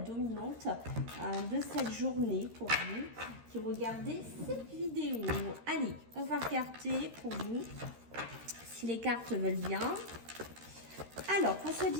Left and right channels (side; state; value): left; late; 13 ms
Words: de cette journée pour vous qui regardez cette vidéo. Allez, on va regarder pour vous si les cartes veulent bien. Alors, pour ce